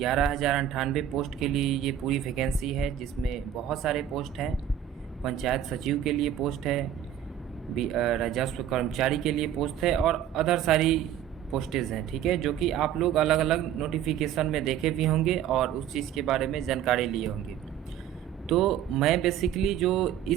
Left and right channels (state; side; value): quieter; left; 10.3 dB